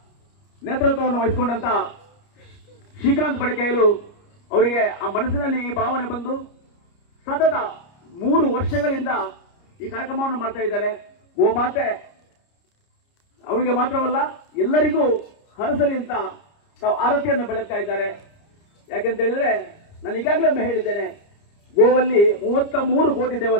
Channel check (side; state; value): right; late; 29 ms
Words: ನೇತೃತ್ವವನ್ನು ವಹಿಸಿಕೊಂಡಂತ ಶ್ರೀಕಾಂತ್ ಬಡಕೈಲು ಅವರಿಗೆ ಆ ಮನಸ್ಸಿನಲ್ಲಿ ಈ ಭಾವನೆ ಬಂದು ಸತತ 3 ವರ್ಷಗಳಿಂದ ಈ ಕಾರ್ಯಕ್ರಮವನ್ನು ಮಾಡ್ತಾ ಇದ್ದಾರೆ. ಗೋಮಾತೆ ಅವರಿಗೆ ಮಾತ್ರವಲ್ಲ ಎಲ್ಲರಿಗೂ ಹರಸಲಿ ಅಂತ ತಾವು ಆರತಿಯನ್ನು ಬೆಳಗ್ತಾ ಇದ್ದಾರೆ. ಯಾಕೆಂತ ಹೇಳಿದ್ರೆ ನಾನು ಈಗಾಗಲೇ ಒಮ್ಮೆ ಹೇಳಿದ್ದೇನೆ, ಗೋವಲ್ಲಿ 33 ಕೋಟಿ